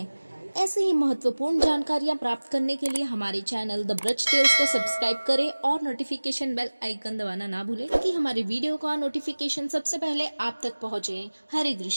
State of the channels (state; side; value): inverted; both; correlation -1.00